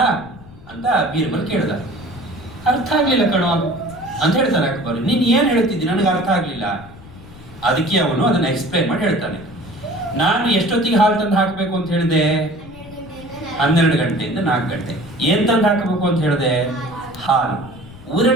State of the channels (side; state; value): left; noise; rumble, 19 dB below the sound